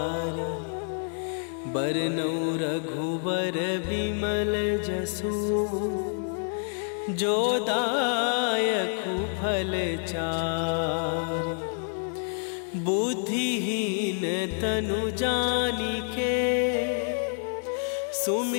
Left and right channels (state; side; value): silent; right; 59 dB below the other